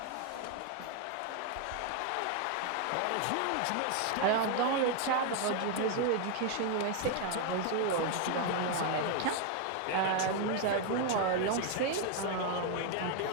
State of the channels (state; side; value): different; both; correlation 0.01